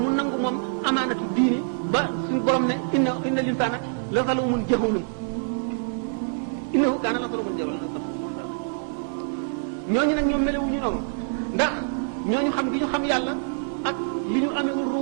nangu moom amaanatu diini ba suñu borom ne inna linsaana la zaluumun jahuulun innahu kaana zaluuman jahuulan ñooñu nag ñoom melewuñu noonu ndax ñooñu xam gi ñu xam yàlla ak li ñu amee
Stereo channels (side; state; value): left; silent; digital silence